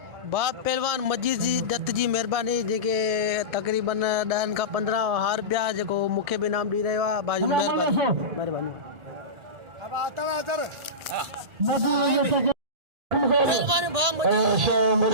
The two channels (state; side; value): late; left; 1.8 ms